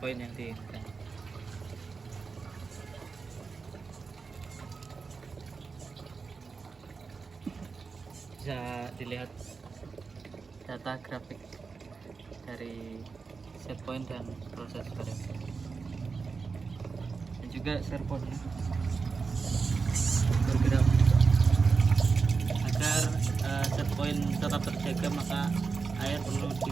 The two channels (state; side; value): quieter; left; 4.8 dB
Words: yang diinginkan. Bisa dilihat data grafik dari set point dan proses variasi, dan juga servonya bergerak agar set point tetap terjaga. Maka